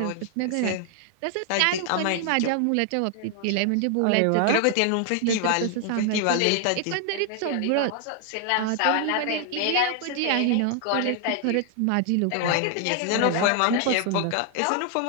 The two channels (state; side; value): different; both; correlation 0.00